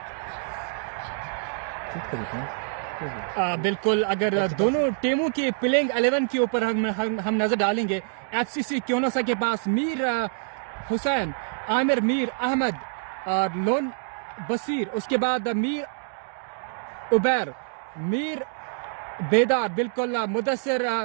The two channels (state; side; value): silent; left; digital silence